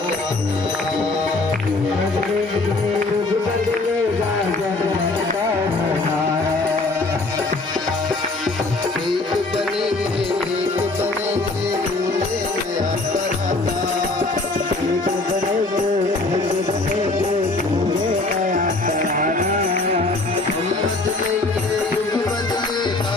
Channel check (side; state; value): right; quieter; 3.2 dB